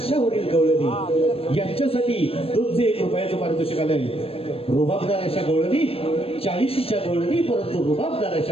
गवळणी यांच्यासाठी 201 रुपयाचं पारितोषिक आलंय. रुबाबदार अशा गवळणी, 40च्या गवळणी, परंतु रुबाबदार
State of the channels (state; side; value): late; right; 0.28 ms